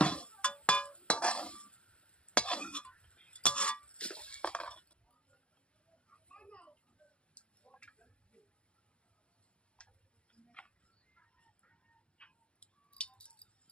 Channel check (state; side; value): late; right; 0.057 ms